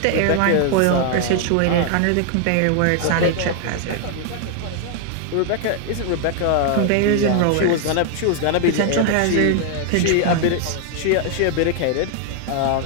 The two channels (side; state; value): both; different; correlation 0.00